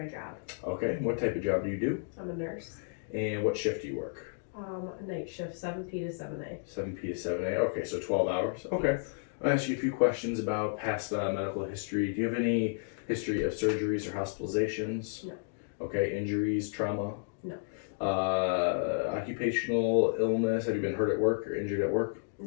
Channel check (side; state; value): right; silent; digital silence